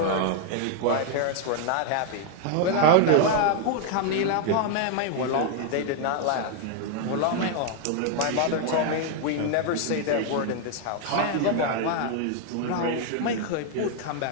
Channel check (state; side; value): different; both; correlation 0.00